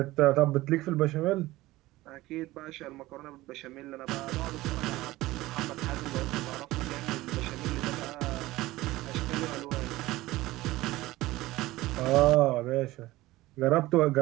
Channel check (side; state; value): left; quieter; 18.0 dB